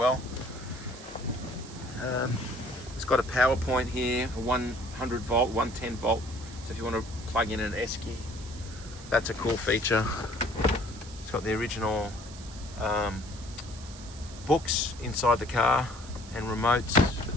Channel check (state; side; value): noise; right; hiss, 17 dB below the sound